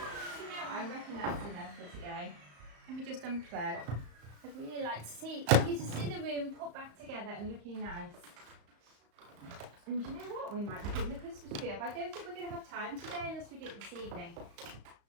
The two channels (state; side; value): late; left; 35 ms